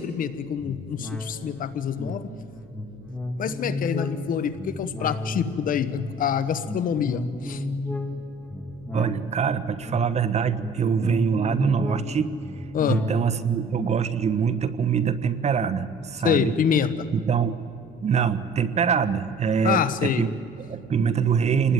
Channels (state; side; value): noise; right; hum, 25 dB below the sound